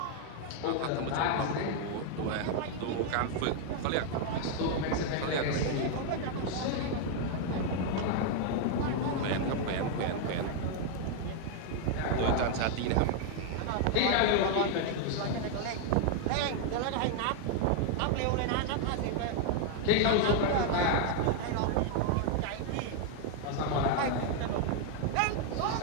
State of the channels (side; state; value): both; different; correlation 0.00